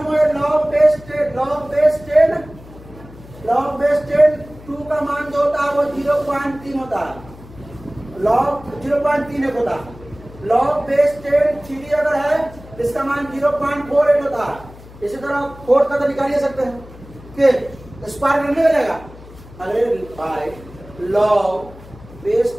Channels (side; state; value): left; noise; hum, 19 dB below the sound